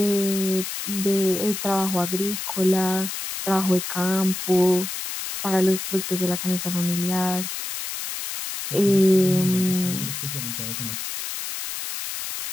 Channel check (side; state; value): left; noise; hiss, 6 dB below the sound